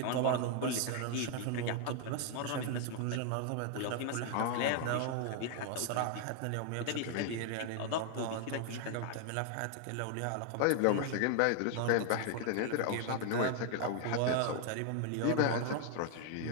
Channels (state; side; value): different; both; correlation 0.00